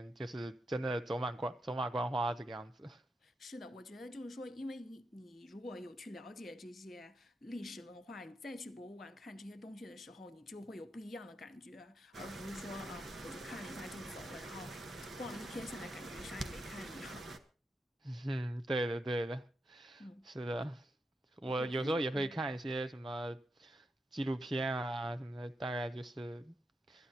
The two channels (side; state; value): both; normal; correlation 0.85